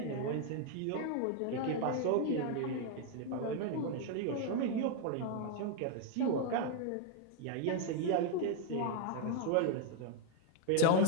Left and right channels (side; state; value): both; different; correlation 0.00